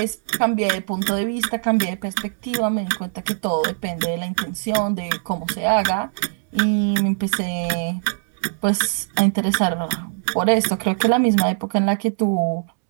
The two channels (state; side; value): silent; left; 65 dB below the other